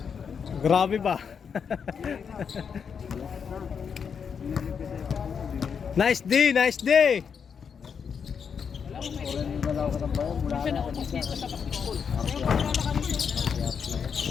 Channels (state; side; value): quieter; right; 6.7 dB